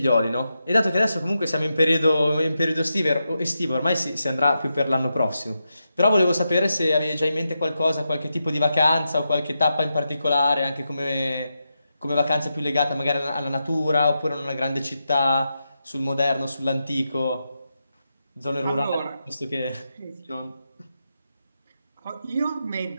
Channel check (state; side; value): inverted; both; correlation -0.87